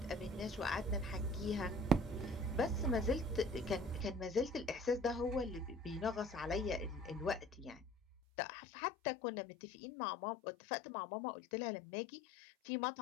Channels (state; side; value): drops out; right; at 8.2 s